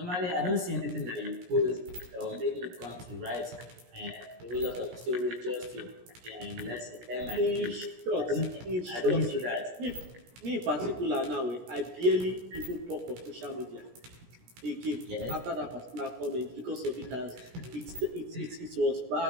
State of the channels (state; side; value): late; left; 17 ms